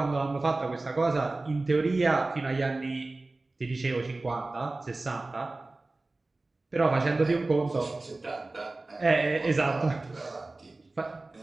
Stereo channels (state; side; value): quieter; left; 3.1 dB